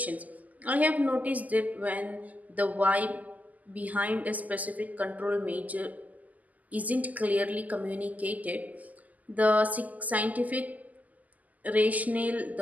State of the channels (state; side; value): late; left; 0.078 ms